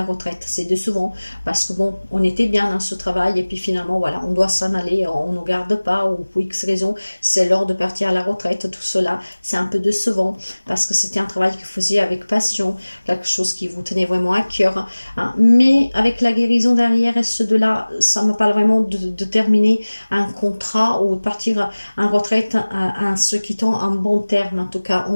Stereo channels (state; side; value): inverted; both; correlation -1.00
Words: retraite. C'est décevant parce que bon, on était bien dans ce travail et puis finalement, voilà, on doit s'en aller, on ne garde pas ou pour X raison, c'est l'heure de partir à la retraite. Tout cela, c'est un peu décevant parce que c'était un travail que vous faisiez avec passion, quelque chose qui vous tenait vraiment à cœur. Hein. Mais avec la guérison derrière et ce de là, ça me parle vraiment de terminer un contrat ou partir en retraite en se quittant en bon terme. En tout cas, on